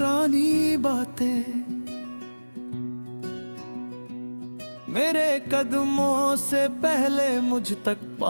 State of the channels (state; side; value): inverted; both; correlation -1.00